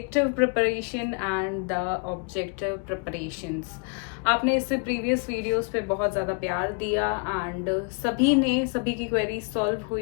preparation and the objective preparations. आपने इससे previous videos पे बहुत ज़्यादा प्यार दिया एंड सभी की क्वेरी सॉल्व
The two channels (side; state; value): right; quieter; 36.8 dB